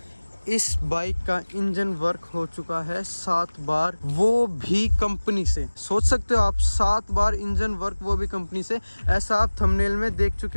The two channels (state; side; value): inverted; both; correlation -1.00